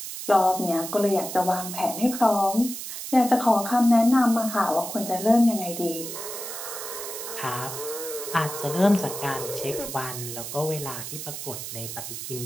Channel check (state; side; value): noise; right; hiss, 8 dB below the sound